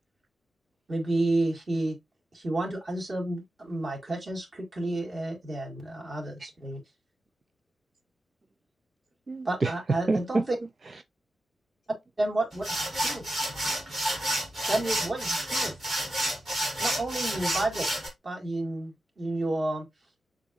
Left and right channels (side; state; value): both; normal; correlation 0.92